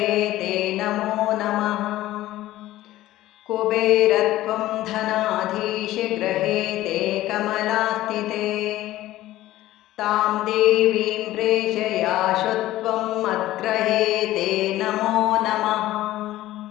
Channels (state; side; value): quieter; right; 15.4 dB